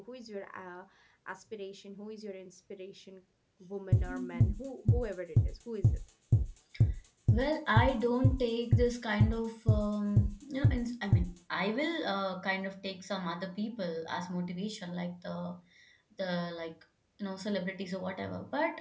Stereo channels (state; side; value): identical; both; correlation 1.00